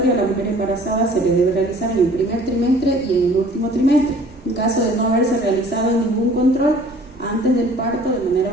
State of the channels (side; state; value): right; noise; rumble, 24 dB below the sound